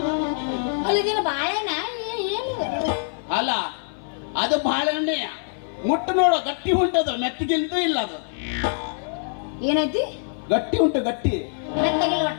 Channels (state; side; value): silent; right; 57 dB below the other